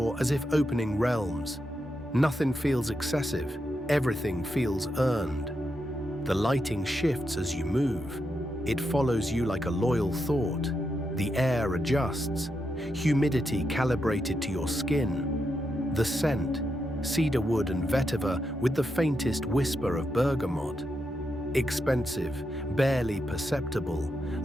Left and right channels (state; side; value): normal; both; correlation 0.84